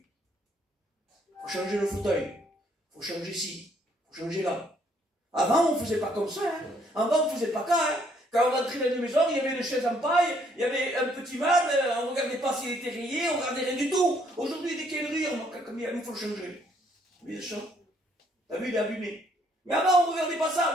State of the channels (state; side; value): normal; both; correlation 0.67